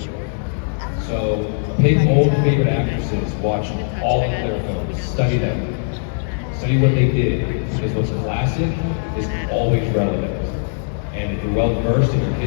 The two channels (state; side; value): silent; right; digital silence